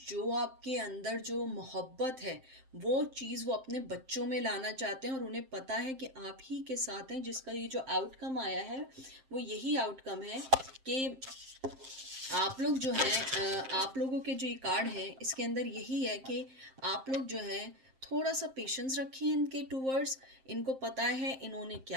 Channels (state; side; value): late; left; 7.6 ms